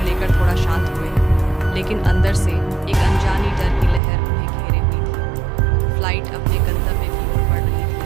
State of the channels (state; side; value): drops out; left; at 4.0 s